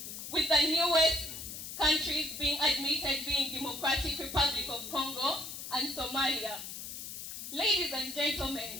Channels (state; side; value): noise; left; hiss, 9 dB below the sound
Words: with the newest countries being admitted being Democratic Republic of Congo and Somalia. Ladies and